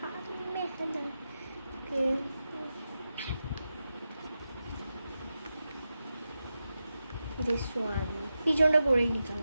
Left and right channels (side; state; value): both; inverted; correlation -0.90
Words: মেহেনা this one পিছনটা করেই নিতাম।